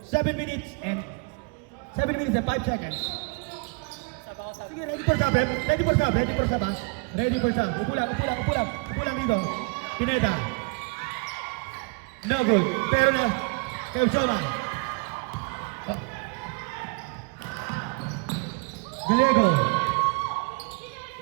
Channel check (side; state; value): left; quieter; 31.6 dB